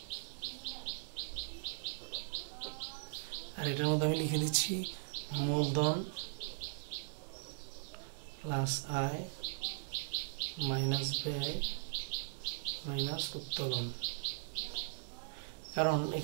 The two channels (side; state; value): left; silent; digital silence